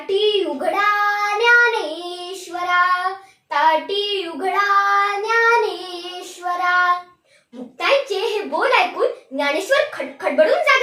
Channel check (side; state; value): both; identical; correlation 1.00